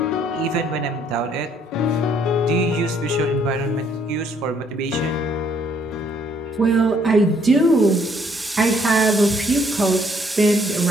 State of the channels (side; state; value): both; normal; correlation 0.66